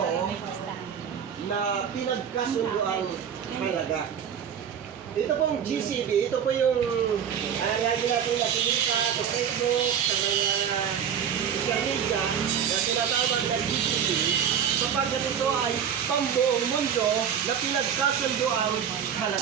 na pinagkasunduang halaga. Ito pong GCB, ito po yung lagi natin nakikita sa Facebook, sa mga social media na tinatawag na GCB, sapagkat ito ay pang buong mundo na pinagkasunduang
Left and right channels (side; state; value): left; quieter; 8.3 dB